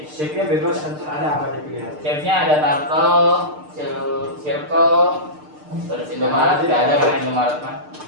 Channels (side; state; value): left; late; 6.6 ms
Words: Shape-nya bebas, nanti ada apa aja pilihan. Shape-nya ada turtle, circle, terus Indomaret, nggak ada kan Indomaret mah,